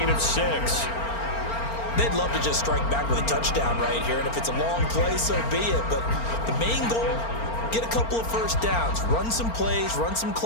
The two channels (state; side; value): late; right; 4.4 ms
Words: of 6. They'd love to just strike back with a touchdown right here, and if it's a long play, so be it. But the main goal, get a couple of first downs, run some plays, run some